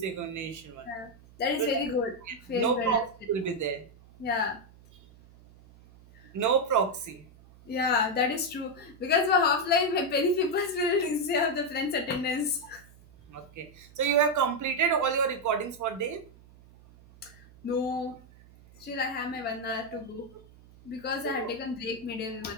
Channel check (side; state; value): right; noise; hum, 24 dB below the sound